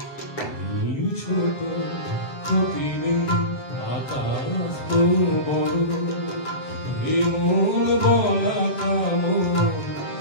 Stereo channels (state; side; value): late; right; 7.4 ms